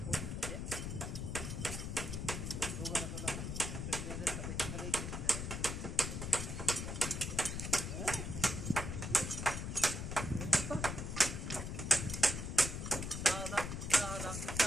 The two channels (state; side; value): noise; left; rumble, 4 dB below the sound